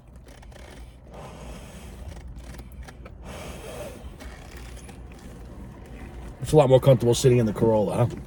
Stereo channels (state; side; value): identical; both; correlation 1.00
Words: It's a lot more comfortable sitting in the Corolla, huh?